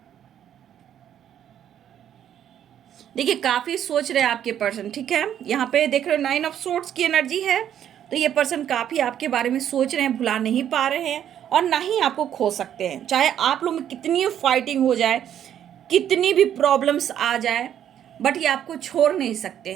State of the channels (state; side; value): quieter; left; 10.1 dB